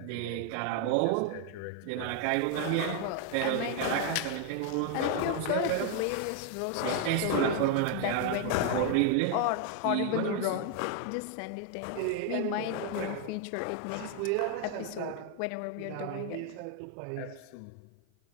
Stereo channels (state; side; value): different; both; correlation 0.01